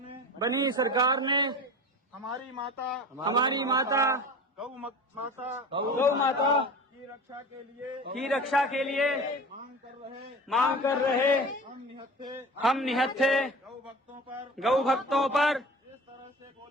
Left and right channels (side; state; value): both; normal; correlation 0.36